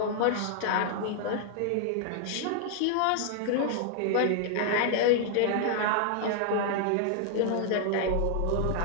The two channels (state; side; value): different; both; correlation -0.01